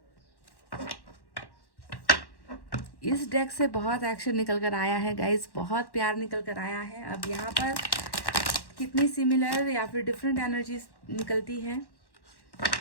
इस डेक से बहुत एक्शन निकल कर आया है गाइज, बहुत प्यार निकल कर आया है। अब यहाँ पर कितनी सिमिलर या फिर डिफरेंट एनर्जीज निकलती हैं।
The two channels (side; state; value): right; late; 1.1 ms